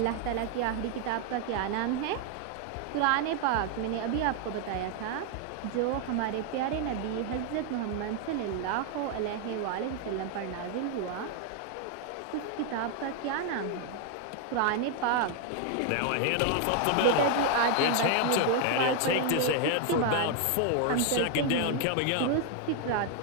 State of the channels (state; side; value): different; both; correlation 0.00